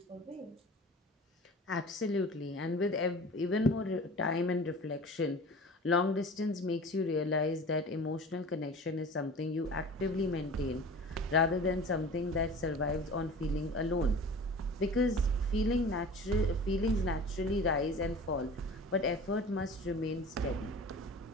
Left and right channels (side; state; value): both; normal; correlation 0.40